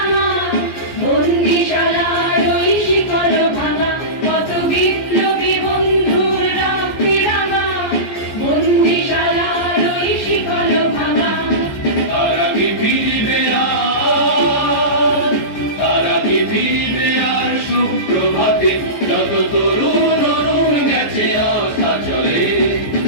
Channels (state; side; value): late; right; 14 ms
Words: আমার বন্দিশালার ওই শিকল ভাঙা, কত বিপ্লবী বন্ধুর রক্তের আমার বন্দিশালার ওই শিকল ভাঙা। তারা কি ফিরবে আর, তারা কি ফিরবে আর সুপ্রভাতে, যত তরুণ অরুণ গেছে আস্থা চলে।